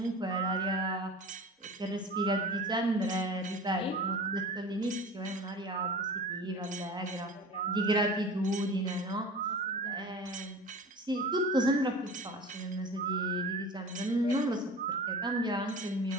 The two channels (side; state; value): both; normal; correlation 0.37